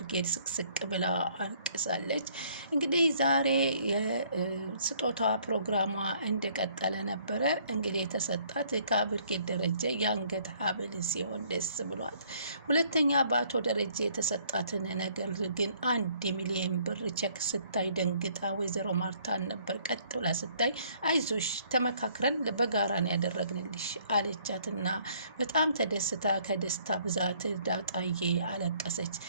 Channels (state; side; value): inverted; both; correlation -0.62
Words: ስቅስቅ ብላ አልቅሳለች። እንግዲህ ዛሬ የስጦታ ፕሮግራሟ እንደቀጠለ ነበረ። እንግዲህ የተሰጣት ከአብርጌል ደረጀ የአንገት ሀብል ሲሆን ደስ ብሏት፣ ሁለተኛ በአቶ ደረጀ የተሰጣትን ነገር ግን 1 ሚሊዮን ብር ቼክ ስታይ ደንግጣ ወይዘሮ ማርታን ነበር ቀጥ ብላ ስታይ አይዞሽ ተመካክረን በጋራ ነው ያደረግንልሽ አለቻትና በጣም ተደስታ ከደስታ ብዛት ዳጣዬ አለቀሰች።